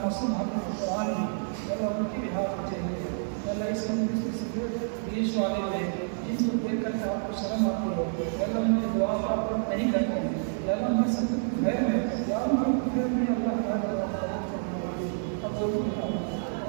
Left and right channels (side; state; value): left; silent; 59 dB below the other